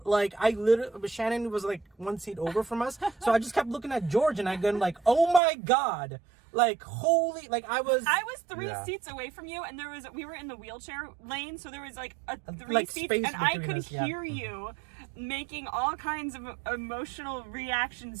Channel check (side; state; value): left; drops out; at 5.4 s